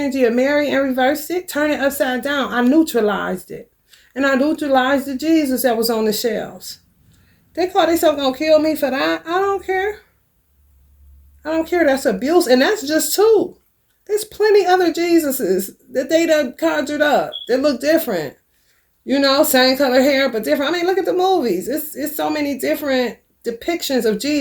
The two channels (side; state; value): both; identical; correlation 1.00